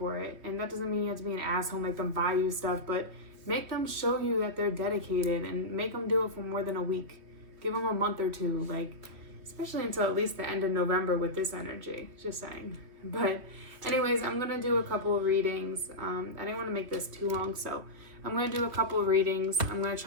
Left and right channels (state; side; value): late; left; 3.1 ms